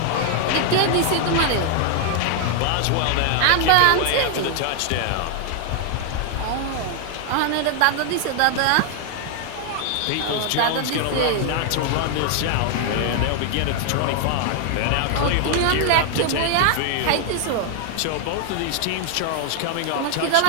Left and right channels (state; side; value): different; both; correlation 0.00